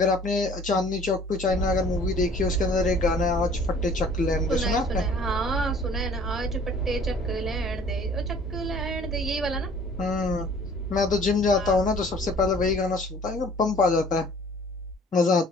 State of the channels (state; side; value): normal; both; correlation 0.52